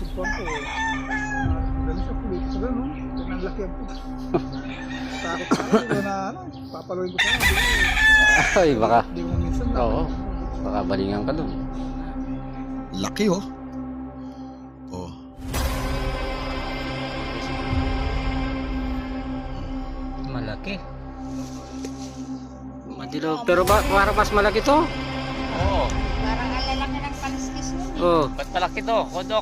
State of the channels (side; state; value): both; identical; correlation 1.00